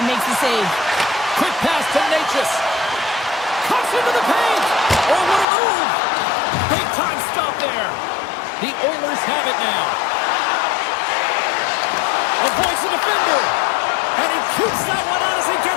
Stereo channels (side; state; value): right; drops out; at 5.5 s